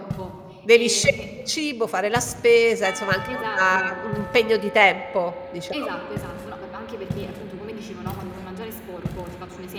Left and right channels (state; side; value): identical; both; correlation 1.00